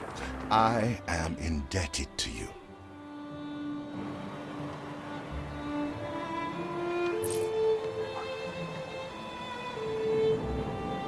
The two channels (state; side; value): identical; both; correlation 1.00